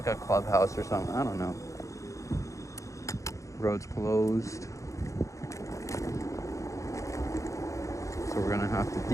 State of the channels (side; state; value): right; late; 0.15 ms